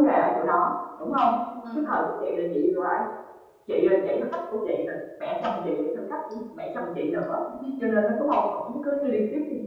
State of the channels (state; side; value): identical; both; correlation 1.00